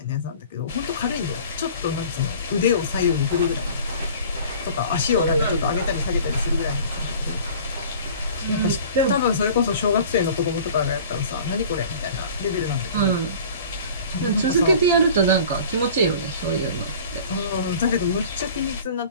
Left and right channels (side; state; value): both; inverted; correlation -0.44